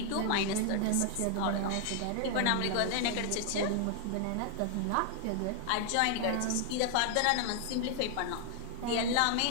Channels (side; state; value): both; different; correlation 0.00